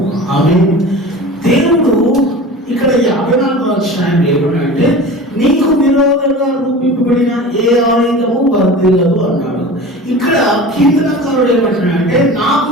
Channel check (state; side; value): normal; both; correlation 0.36